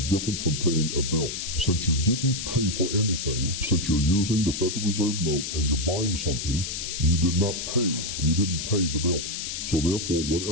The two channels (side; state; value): left; noise; hiss, 5 dB below the sound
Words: different from paying a bill. Since you didn't pay for anything, since you're using the Federal Reserve note and you're buying something, you did not pay. You didn't pay the bill. So therefore,